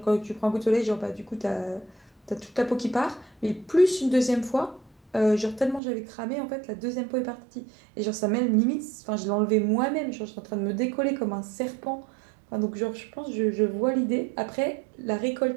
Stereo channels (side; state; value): left; drops out; at 5.8 s